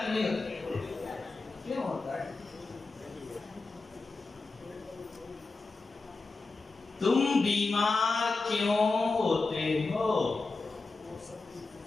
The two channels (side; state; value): right; quieter; 3.8 dB